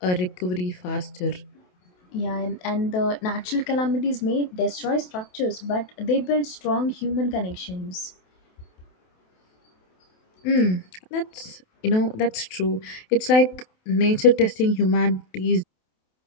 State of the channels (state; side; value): late; right; 28 ms